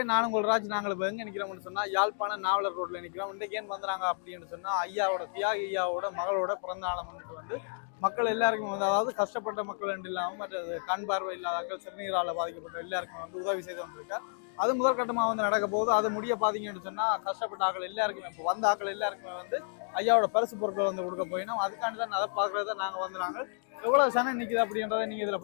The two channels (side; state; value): right; silent; digital silence